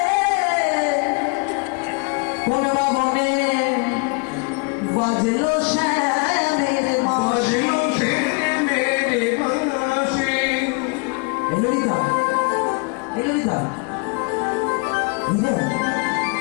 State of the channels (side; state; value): right; quieter; 32.5 dB